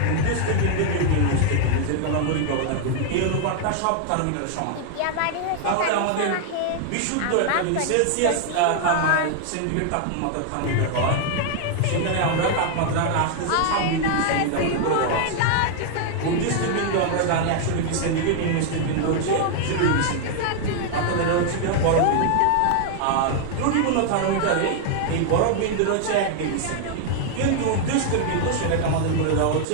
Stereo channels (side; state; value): both; different; correlation 0.00